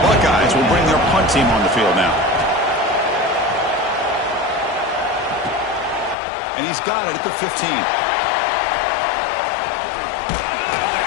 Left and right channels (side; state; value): right; drops out; at 6.2 s